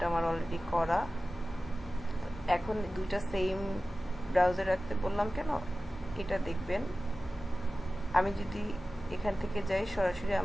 আমার অলরেডি করা। এখন দুইটা সেম ব্রাউজার রাখতে বললাম কেন, এটা দেখবেন আমি যদি এখান থেকে যাই সরাসরি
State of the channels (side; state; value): both; normal; correlation 0.95